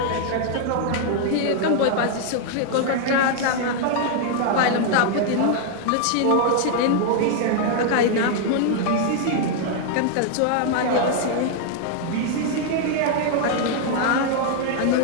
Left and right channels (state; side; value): different; both; correlation 0.00